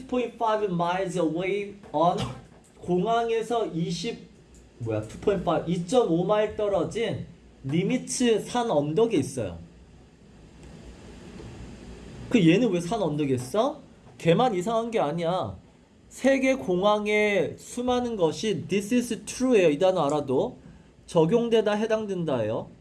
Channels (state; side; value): identical; both; correlation 1.00